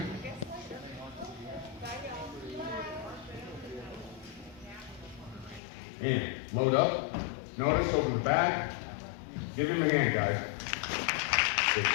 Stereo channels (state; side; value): drops out; right; at 5.6 s